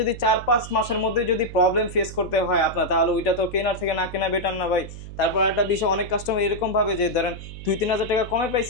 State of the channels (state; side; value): noise; right; hum, 12 dB below the sound